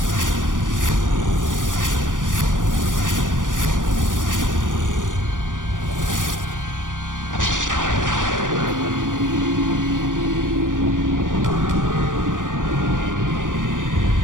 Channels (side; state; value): left; late; 0.88 ms